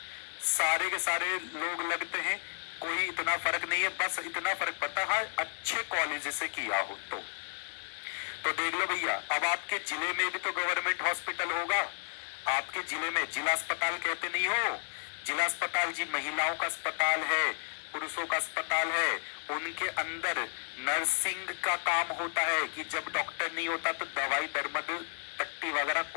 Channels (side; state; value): right; silent; digital silence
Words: सारे के सारे लोग लगते हैं, कोई इतना फर्क नहीं है, बस इतना फर्क पड़ता है हाँ अच्छे कॉलेज से किया हो तो देख लो भैया, अब आपके जिले में भी तो गवर्नमेंट हॉस्पिटल होगा। आपके जिले में जिला अस्पताल कहते नहीं हो, जिला अस्पताल जी महिलाओं का अस्पताल है, पुरुषों का अस्पताल है, उनके अंदर नर्सिंग का काम होता है कि जब डॉक्टर नहीं होता तो दवाई दरमद पट्टी वगैरह